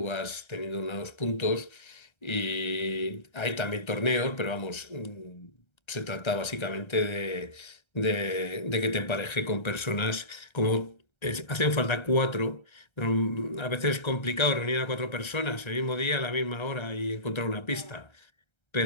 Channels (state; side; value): late; right; 1.3 ms